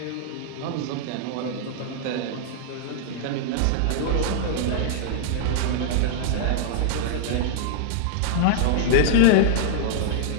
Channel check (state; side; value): different; both; correlation -0.01